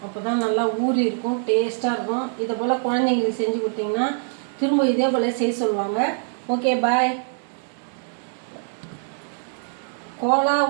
அப்போ தான் நல்லா ஊறி இருக்கும், டேஸ்ட்டாக இருக்கும். இதை போல் குழந்தைங்களுக்கு செஞ்சு கொடுத்தீங்கன்னா திரும்ப இதே போல் செய்ய சொல்லுவாங்க. ஓகே, பாய். கோலா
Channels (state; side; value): silent; left; digital silence